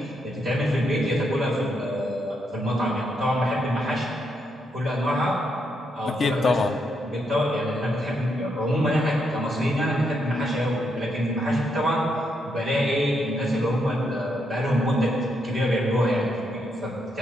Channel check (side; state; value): both; normal; correlation 0.79